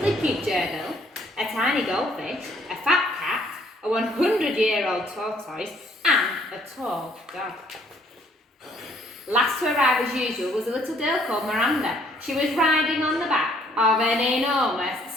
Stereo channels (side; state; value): both; normal; correlation 0.63